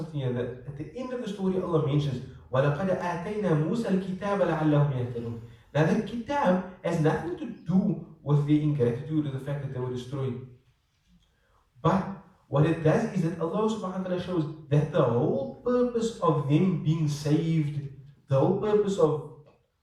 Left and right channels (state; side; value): identical; both; correlation 1.00